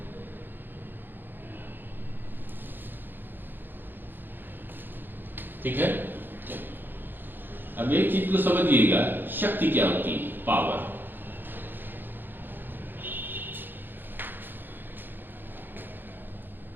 ठीक है, अब एक चीज को समझिएगा, शक्ति क्या होती है, पावर।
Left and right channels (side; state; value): left; late; 0.095 ms